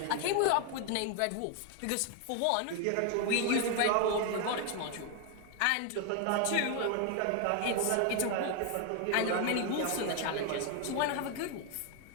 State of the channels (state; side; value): different; both; correlation 0.00